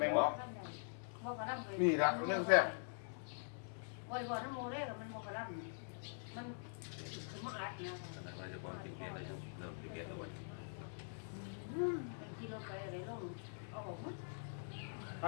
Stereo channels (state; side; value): silent; right; digital silence